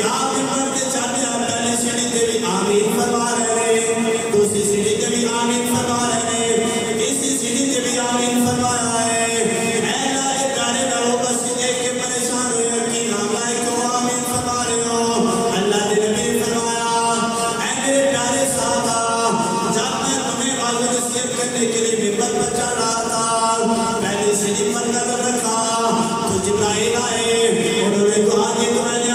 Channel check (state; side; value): identical; both; correlation 1.00